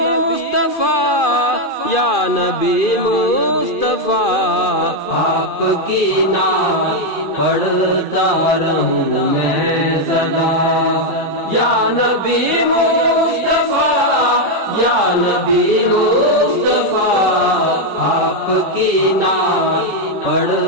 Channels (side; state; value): right; late; 2.4 ms